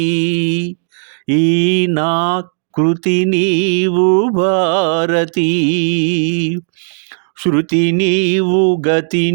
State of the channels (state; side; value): silent; left; digital silence